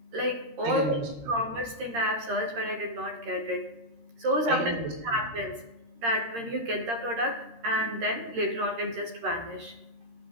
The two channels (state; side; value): late; left; 13 ms